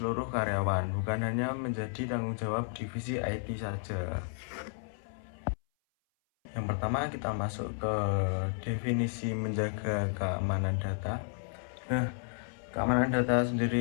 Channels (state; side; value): silent; right; 56 dB below the other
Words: karyawan, bukan hanya menjadi tanggung jawab divisi IT saja. Yang pertama kita masuk ke definisi menjaga keamanan data. Nah, keamanan data